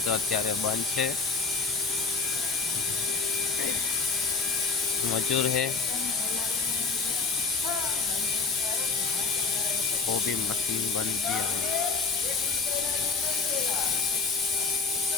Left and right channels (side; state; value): right; quieter; 4.5 dB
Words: તો અત્યારે બંધ છે. मजूर है वो भी मशीन बन गया है.